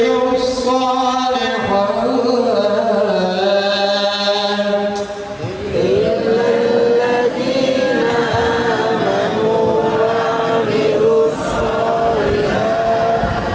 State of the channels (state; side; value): identical; both; correlation 1.00